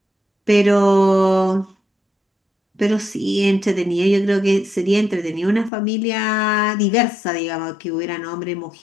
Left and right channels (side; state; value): right; drops out; at 5.7 s